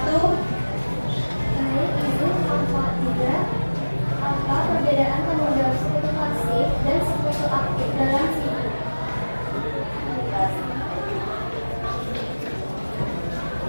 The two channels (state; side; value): inverted; both; correlation -1.00